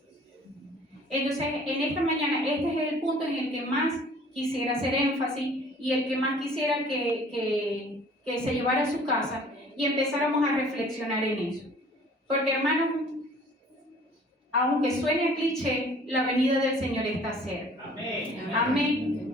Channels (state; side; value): normal; both; correlation 0.52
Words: Entonces, en esta mañana, este es el punto en el que más quisiera hacer énfasis y el que más quisiera que se llevara a su casa y empezáramos a reflexionar en eso. Porque, hermanos, aunque suene cliché, la venida del Señor está cerca. Amén. Amén.